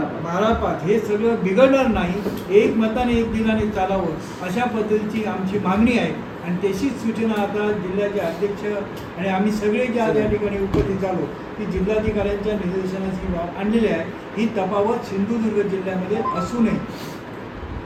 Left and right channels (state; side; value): identical; both; correlation 1.00